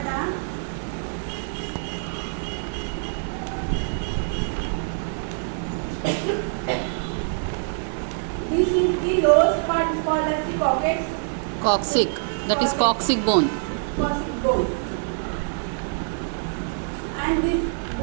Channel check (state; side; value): silent; left; digital silence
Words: This is the lowest part is called as the coccyx. Coccyx. That is coccyx bone. Coccyx bone. And this